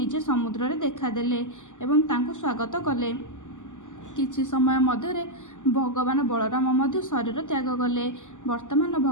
ସମୁଦ୍ରରେ ଦେଖାଦେଲେ ଏବଂ ତାଙ୍କୁ ସ୍ୱାଗତ କଲେ। କିଛି ସମୟ ମଧ୍ୟରେ ଭଗବାନ ବଳରାମ ମଧ୍ୟ ଶରୀର ତ୍ୟାଗ କଲେ। ବର୍ତ୍ତମାନ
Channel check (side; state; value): right; late; 0.86 ms